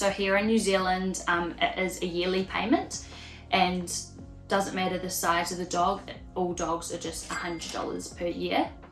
here in New Zealand, it is a yearly payment, and doesn't matter the size of the dog, all dogs are just $100 per year.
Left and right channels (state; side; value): identical; both; correlation 1.00